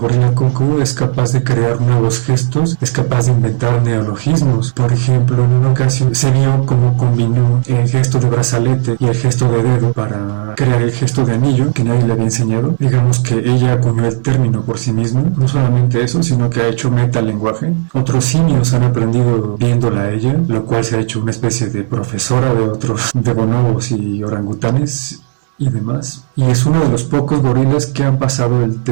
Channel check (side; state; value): left; silent; digital silence